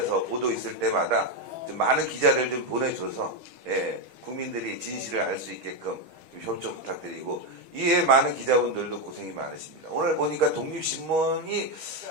보도 있을 때마다 좀 많은 기자들 좀 보내줘서 예, 국민들이 진실을 알 수 있게끔 좀 협조 부탁드리고 이에 많은 기자분들도 고생이 많으십니다. 오늘 보니까 독립신문이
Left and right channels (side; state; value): left; late; 6.3 ms